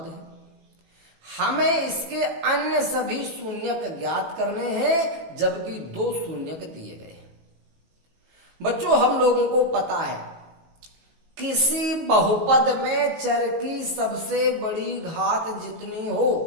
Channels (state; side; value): late; left; 18 ms